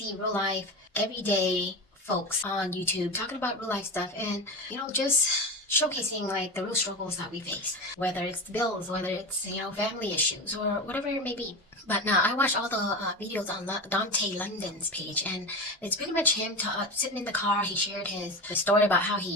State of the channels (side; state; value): both; normal; correlation 0.24